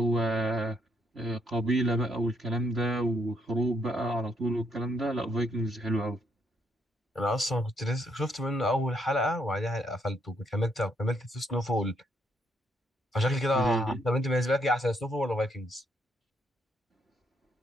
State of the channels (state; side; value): normal; both; correlation 0.73